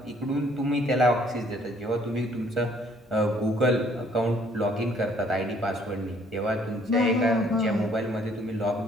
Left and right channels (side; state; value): both; normal; correlation 0.62